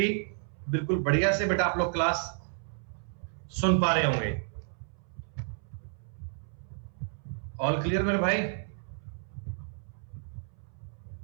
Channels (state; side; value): silent; left; 57 dB below the other